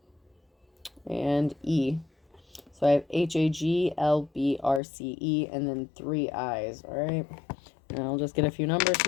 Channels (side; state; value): right; drops out; at 4.8 s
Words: And E. So I have HAGLBRCE and then 3 eyes. All right. And I'll just get a few numbers